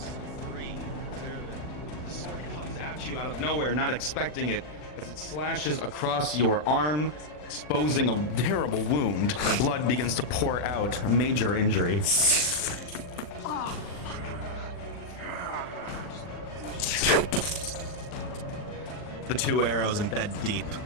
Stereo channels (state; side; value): late; right; 40 ms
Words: the sword comes at you out of nowhere, not expecting it, as it slashes across your arm, exposing a terrible wound. The blood begins to pour out, a major injury. The 2 arrows embed deep.